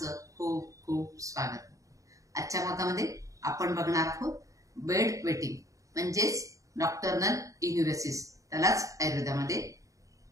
खूप खूप स्वागत. आजच्या भागामध्ये आपण बघणार आहोत बेड वेटिंग म्हणजेच नॉक्टर्नल इन्युरेसिस, त्यालाच आयुर्वेदामध्ये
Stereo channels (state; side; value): late; left; 0.16 ms